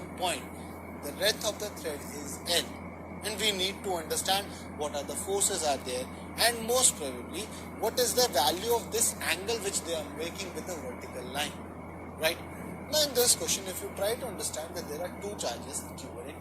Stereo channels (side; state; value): both; identical; correlation 1.00